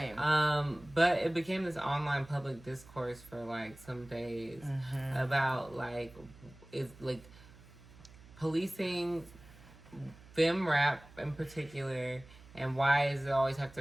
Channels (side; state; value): right; noise; hum, 21 dB below the sound